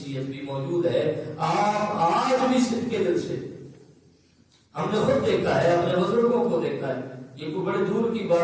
بھی موجود ہے۔ آپ آج بھی صدقے دل سے، ہم نے خود دیکھا ہے، اپنے بزرگوں کو دیکھا ہے، یہ کوئی بڑے دور کی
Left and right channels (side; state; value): both; identical; correlation 1.00